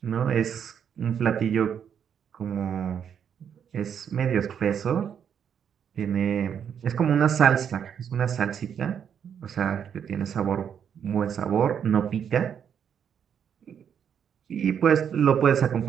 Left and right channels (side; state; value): left; quieter; 8.1 dB